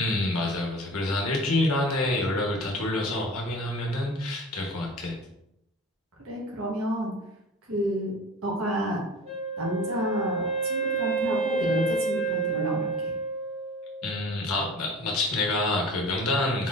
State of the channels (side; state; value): both; normal; correlation 0.39